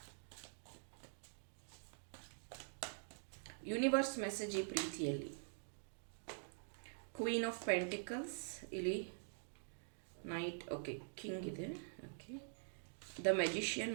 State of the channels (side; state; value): left; silent; digital silence